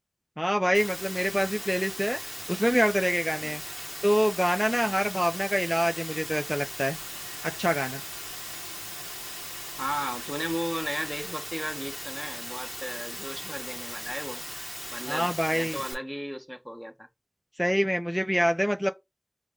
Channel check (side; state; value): both; identical; correlation 1.00